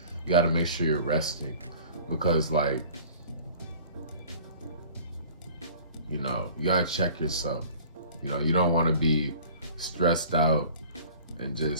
You got to make sure you're resting, because, like, you got to check yourself. You don't want to be stressed out and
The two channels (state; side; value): inverted; both; correlation -0.47